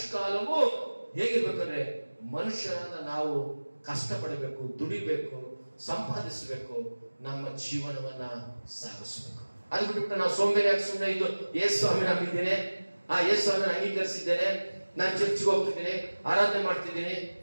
ಹೇಗಿರ್ಬೇಕಂದ್ರೆ ಮನುಷ್ಯರಾದ ನಾವು ಕಷ್ಟಪಡಬೇಕು, ದುಡಿಬೇಕು, ಸಂಪಾದಿಸಬೇಕು, ನಮ್ಮ ಜೀವನವನ್ನ ಸಾಗಿಸಬೇಕು. ಅದು ಬಿಟ್ಟು ನಾವು ಸೋಂಬೇರಿಯಾಗಿ ಸುಮ್ಮನೆ ಇದು ಯೇಸು ಸ್ವಾಮಿ ನಂಬಿದ್ದೇನೆ, ಯೇಸು ಸ್ವಾಮಿನ ಅಂಗೀಕರಿಸಿದ್ದೇನೆ, ನಾನು ಚರ್ಚ್ಗೆ ಹೋಗ್ತಿದ್ದೀನಿ, ಆರಾಧನೆ ಮಾಡ್ತಿದ್ದೀನಿ,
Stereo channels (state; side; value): inverted; both; correlation -1.00